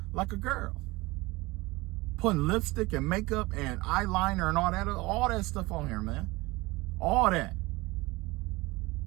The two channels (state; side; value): quieter; left; 21.8 dB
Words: like a girl, putting lipstick and makeup and eyeliner and all that stuff on here, man. All that.